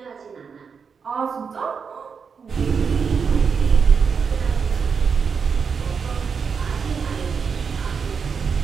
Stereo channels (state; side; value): quieter; left; 6.0 dB